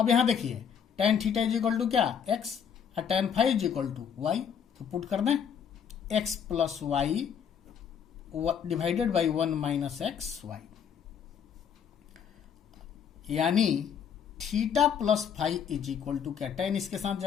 यहां देखिए tan theta is equal to क्या, x, और tan phi is equal to y। तो पुट कर दें x plus y divided by 1 minus x y, यानी theta plus phi is equal to क्या, tan इसके साथ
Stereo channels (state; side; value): quieter; right; 7.8 dB